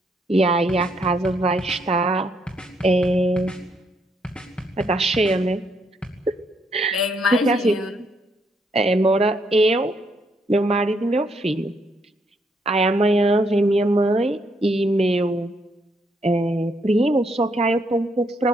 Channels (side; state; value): both; normal; correlation 0.74